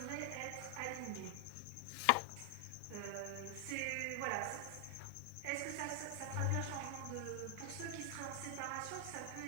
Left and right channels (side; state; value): both; different; correlation 0.00